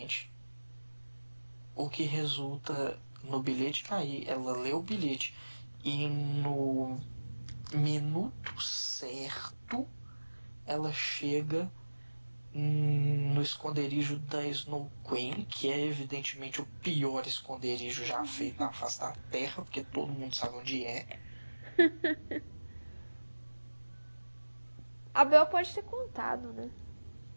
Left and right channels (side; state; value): both; inverted; correlation -1.00